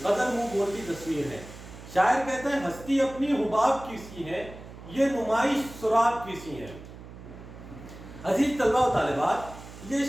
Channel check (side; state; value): right; noise; hum, 15 dB below the sound